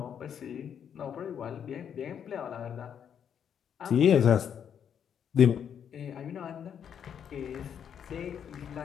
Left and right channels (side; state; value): right; quieter; 8.3 dB